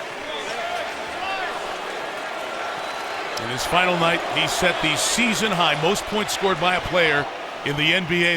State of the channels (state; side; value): identical; both; correlation 1.00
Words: In his final night, he set the season high most points scored by a player in the